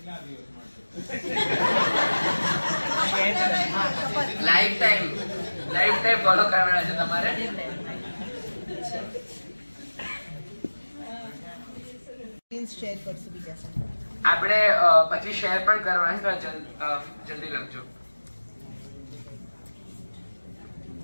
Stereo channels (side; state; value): both; inverted; correlation -1.00